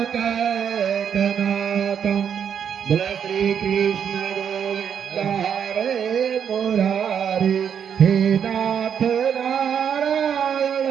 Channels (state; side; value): quieter; left; 8.0 dB